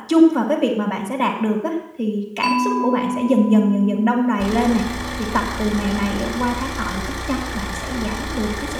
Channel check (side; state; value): both; identical; correlation 1.00